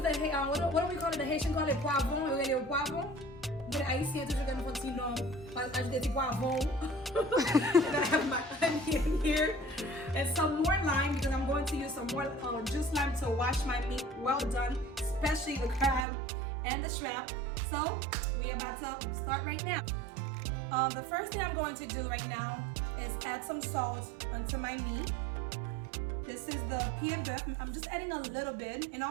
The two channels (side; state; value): left; drops out; at 16.1 s